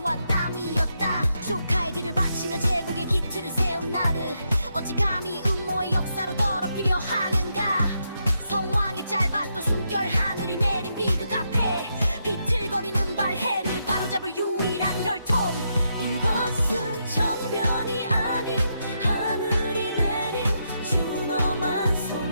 땀이었다. 조카의 뒤를 바치며 제국의 기틀을 세운 나를 어찌 감히 음모의 역사로 더럽히려 하는가. 성왕의 짧았던 숨결, 하늘이 내린 비극 앞에 비틀거리는 발해를 바로잡을 유일한 혈통. 이것은 정변이 아닌 하늘이 내린 준엄한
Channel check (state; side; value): inverted; both; correlation -0.81